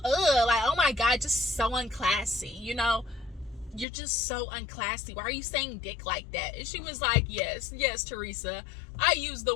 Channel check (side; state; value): right; drops out; at 3.9 s